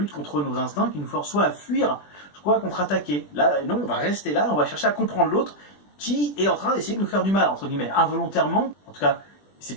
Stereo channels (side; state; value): right; late; 20 ms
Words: contre nos instincts qui nous forcent soit à fuir, soit à contre-attaquer. Là, non, on va rester là, on va chercher à comprendre l'autre qui est en train d'essayer de nous faire du mal, entre guillemets, involontairement. En tout cas,